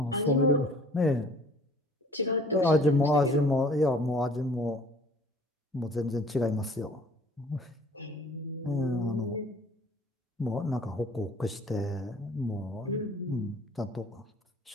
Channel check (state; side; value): normal; both; correlation 0.52